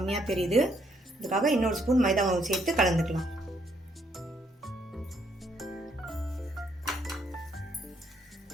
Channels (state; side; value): normal; both; correlation 0.71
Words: தெரியுது, அதுக்காக இன்னொரு ஸ்பூன் மைதா மாவு சேர்த்து கலந்துக்கலாம்.